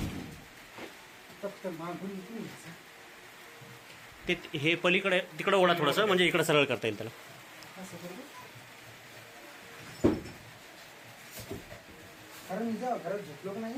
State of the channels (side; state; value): both; identical; correlation 1.00